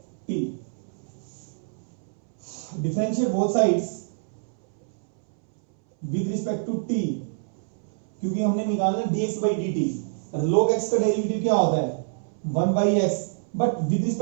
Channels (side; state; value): left; silent; 61 dB below the other